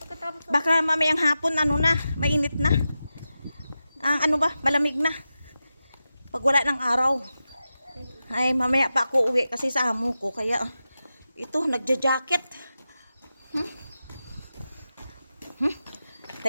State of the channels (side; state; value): both; inverted; correlation -0.91